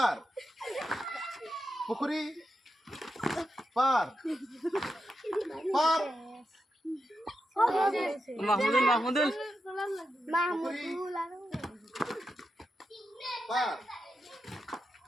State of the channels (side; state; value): both; normal; correlation 0.88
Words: পুকুরি পার পার মাহমুদুল পার